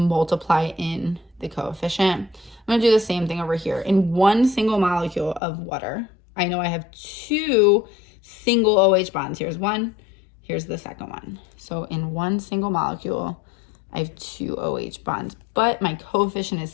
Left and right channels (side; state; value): right; drops out; at 5.4 s